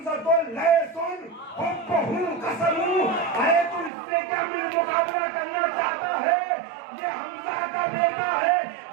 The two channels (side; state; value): left; drops out; at 3.9 s